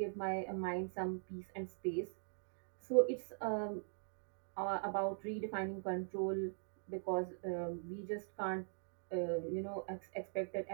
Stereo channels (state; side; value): silent; left; digital silence